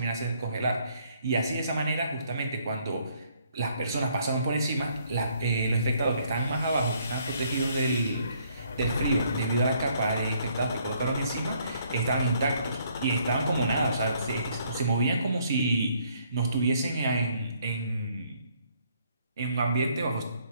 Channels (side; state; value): both; inverted; correlation -0.67